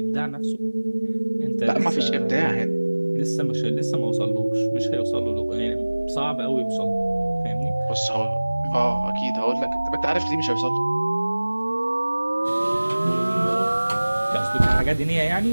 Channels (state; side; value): inverted; both; correlation -1.00